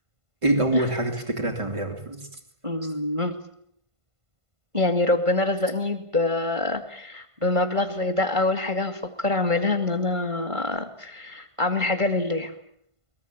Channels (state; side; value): late; left; 1.5 ms